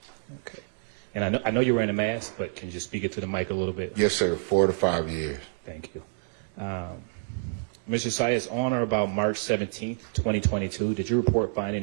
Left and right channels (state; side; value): silent; left; digital silence